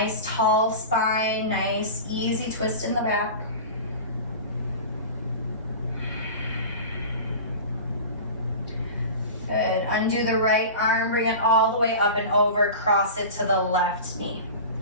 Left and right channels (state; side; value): inverted; both; correlation -0.33